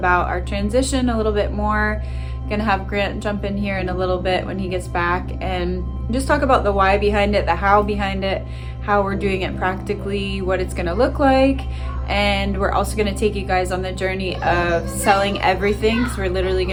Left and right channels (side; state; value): both; identical; correlation 1.00